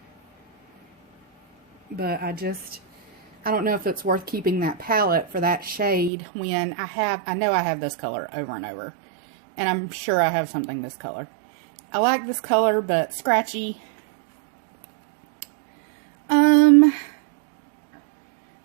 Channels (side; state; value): left; drops out; at 6.1 s